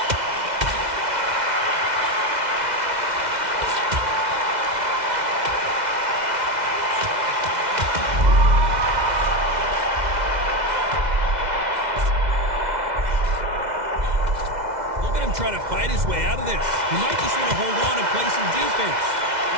Look at him try to fight his way out of this. He might just want to hold on and play some defense.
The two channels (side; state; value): left; late; 2.0 ms